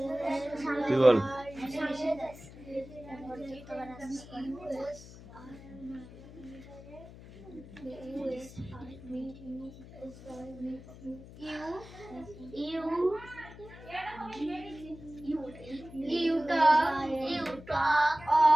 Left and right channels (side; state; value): left; noise; hum, 17 dB below the sound